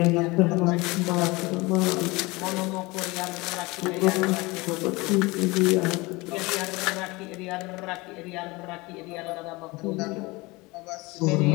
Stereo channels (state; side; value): quieter; right; 23.5 dB